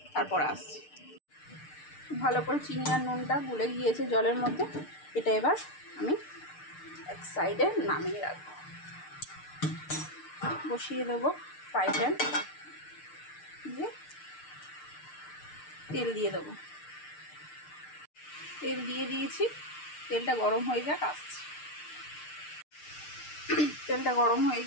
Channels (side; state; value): right; late; 6.7 ms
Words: তারপর আসছি। ভালো করে চিনি আর নুনটা গুলে গিয়েছে জলের মধ্যে। এটা এবার আমি এক সাইডে নামিয়ে রাখবো। বসিয়ে দেবো ফ্রাই প্যান, দিয়ে তেল দিয়ে দেবো। তেল দিয়ে দিয়েছি, তেলটা গরম হয়ে যাক, আসছি। তেলটা গরম হয়ে